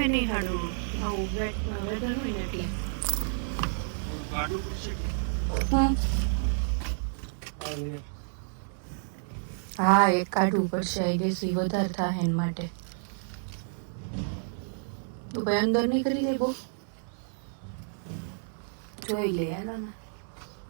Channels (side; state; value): left; silent; 58 dB below the other